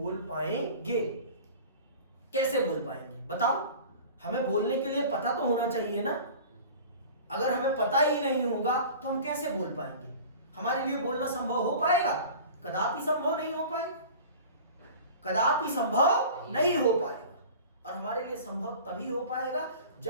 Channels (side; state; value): both; inverted; correlation -0.40